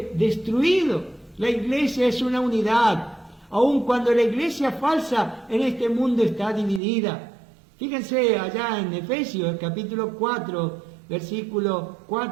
destruido. La iglesia es una unidad, aun cuando la iglesia falsa en este mundo está dividida. Fíjense allá en Efesios capítulo 4, versículo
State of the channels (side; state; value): left; drops out; at 6.8 s